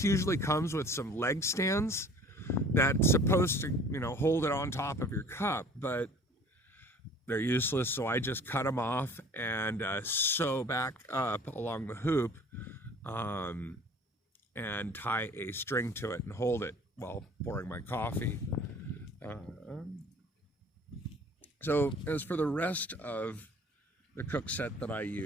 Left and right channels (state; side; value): normal; both; correlation 0.49